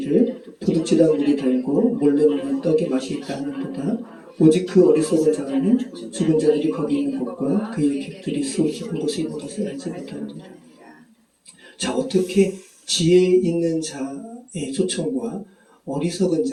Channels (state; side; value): identical; both; correlation 1.00